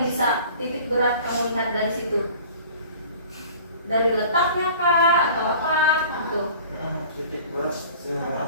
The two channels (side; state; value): both; inverted; correlation -0.45